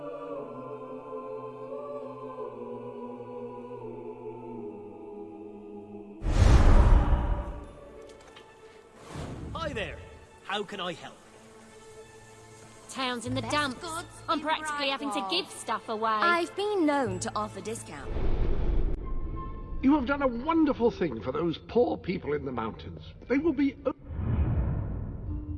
Hi there. How can I help? Town's in the dumps. I'm practically having to give stuff away. I've been known to offer discount. You have done a wonderful thing for those poor people in the mountains. They will be...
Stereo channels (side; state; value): both; identical; correlation 1.00